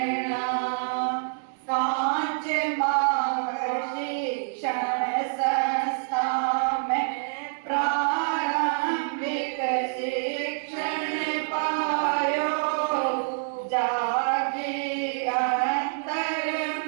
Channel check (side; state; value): left; silent; digital silence